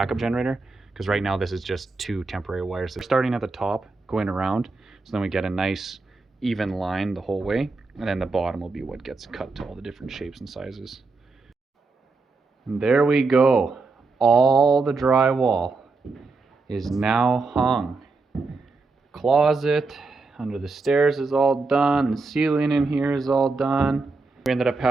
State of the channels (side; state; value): left; quieter; 3.9 dB